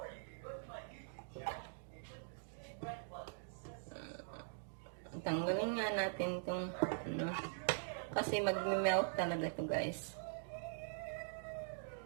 Tanggalin nga natin itong ano. Kasi mag-melt talaga to guys.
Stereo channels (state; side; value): silent; left; digital silence